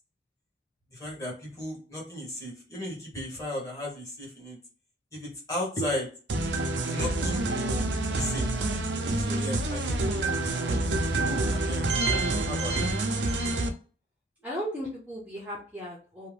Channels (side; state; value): both; normal; correlation 0.56